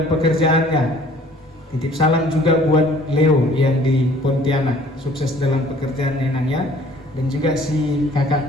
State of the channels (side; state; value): both; normal; correlation 0.54